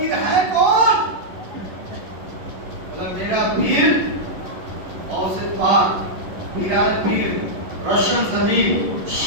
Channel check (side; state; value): left; late; 11 ms